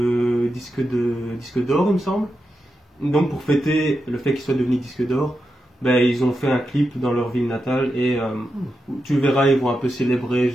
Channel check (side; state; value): both; normal; correlation 0.88